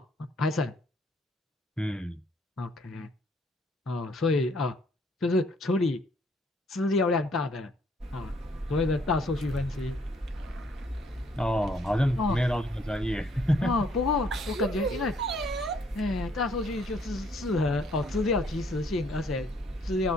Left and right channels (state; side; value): normal; both; correlation 0.65